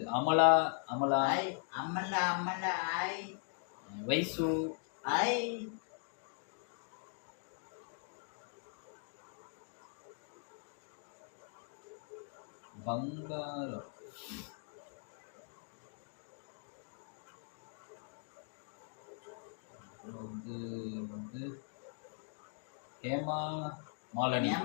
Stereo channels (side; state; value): right; silent; 51 dB below the other